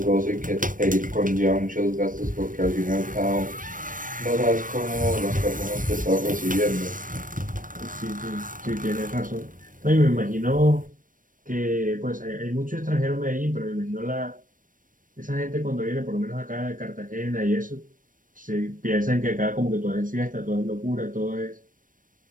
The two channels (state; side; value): late; left; 0.39 ms